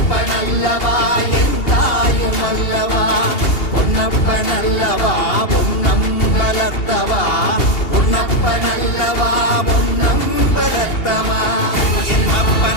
பொன்னப்பனல்லவா என் தாயும் அல்லவா பொன்னப்பனல்லவா பொன்னம் வளர்த்தவா பொன்னப்பனல்லவா பொன்னம் வளர்த்தவா என்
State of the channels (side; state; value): right; late; 2.8 ms